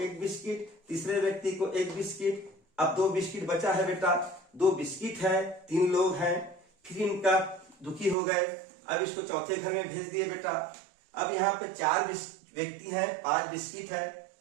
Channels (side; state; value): left; drops out; at 8.2 s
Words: बिस्किट, तीसरे व्यक्ति को 1 बिस्किट। अब 2 बिस्किट बचा है बेटा, 2 बिस्किट है, 3 लोग हैं, फिर इनका दुखी हो गए। अब इसको चौथे घर में भेज दिए बेटा। अब यहाँ पे 4 व्यक्ति हैं, 5 बिस्किट है।